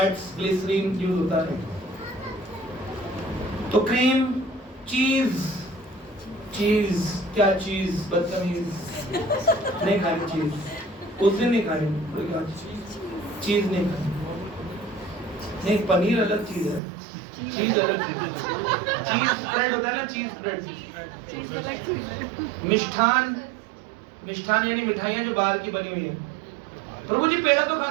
ग्लिसरीन यूज होता है। तो क्रीम, चीज, चीज क्या चीज, बदतमीज, नहीं खानी चीज, उस दिन नहीं खानी चीज, नहीं खानी। नहीं, पनीर अलग चीज है, चीज अलग चीज है। चीज स्प्रेड होता है ना, चीज स्प्रेड, चीज अलग चीज है। मिष्ठान, मिष्ठान यानी मिठाइयाँ जो बाहर की बनी हुई है। प्रभु जी पेड़ा तो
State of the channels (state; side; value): drops out; left; at 16.8 s